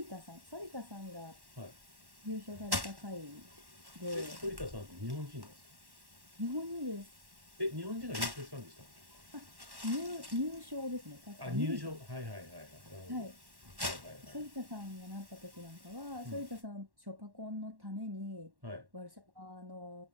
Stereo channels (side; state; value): left; late; 1.1 ms